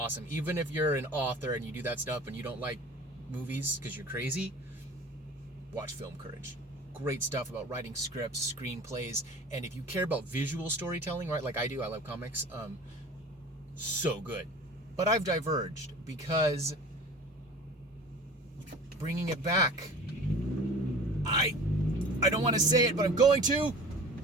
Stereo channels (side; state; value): both; normal; correlation 0.41